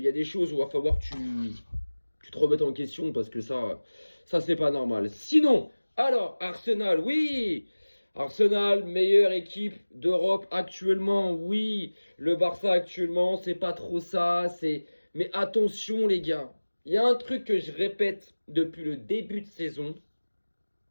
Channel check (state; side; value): inverted; both; correlation -1.00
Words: y a des choses où il va falloir que tu te remettes en question parce que ça c'est pas normal. Sinon, alors, Arsenal, oui, Arsenal, meilleure équipe d'Europe actuellement. Oui, le Barça actuellement, c'est pas trop ça. Mais attention, les gars. Il y a un truc que je répète depuis le début de saison.